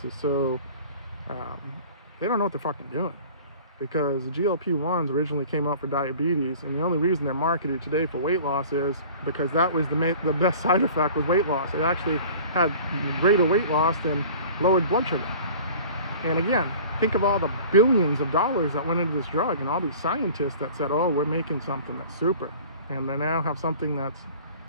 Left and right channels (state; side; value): inverted; both; correlation -0.44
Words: is so, they don't know what they're fucking doing. Because the GLP-1s originally came out for diabetes, and the only reason they're marketed today for weight loss is because that was the best side effect was weight loss. It actually had greater weight loss than lowered blood sugar. And again, think of all the billions of dollars that went into this drug, and all these scientists that said, oh, we're making something that's super. And they now have something that's